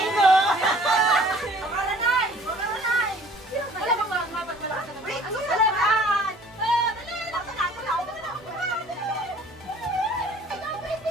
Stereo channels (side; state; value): both; normal; correlation 0.52